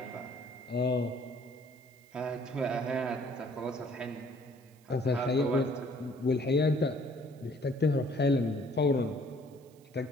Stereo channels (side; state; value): right; noise; hiss, 30 dB below the sound